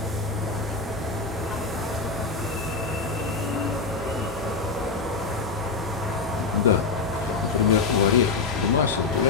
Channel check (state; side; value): quieter; right; 4.3 dB